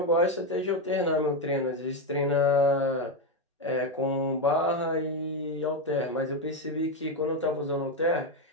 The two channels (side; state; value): both; normal; correlation 0.09